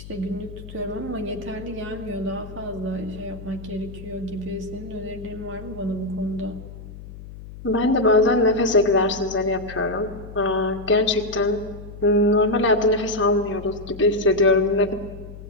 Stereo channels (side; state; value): left; noise; hum, 14 dB below the sound